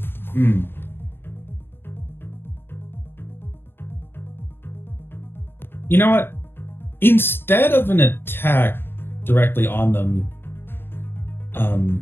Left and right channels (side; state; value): right; late; 0.11 ms